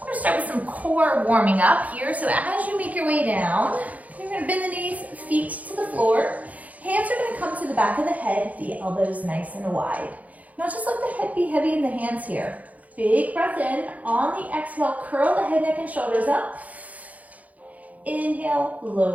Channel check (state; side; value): late; left; 0.074 ms